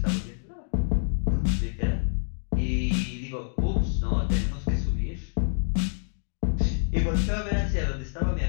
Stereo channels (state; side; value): silent; right; digital silence